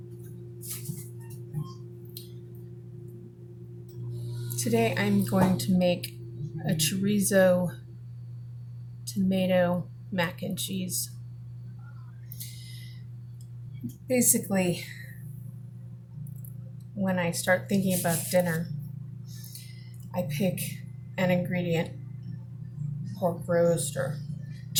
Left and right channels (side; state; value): both; identical; correlation 1.00